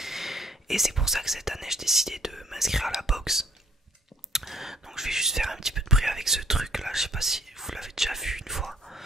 Et c'est pour ça que cette année j'ai décidé de m'inscrire à la boxe. Donc je vais juste faire un petit peu de bruit avec ce truc là, je sais pas si vous l'avez déjà vu une fois.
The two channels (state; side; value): normal; both; correlation 0.59